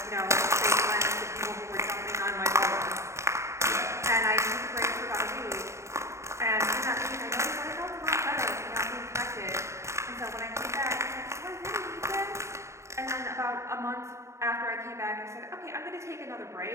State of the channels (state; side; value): late; left; 0.14 ms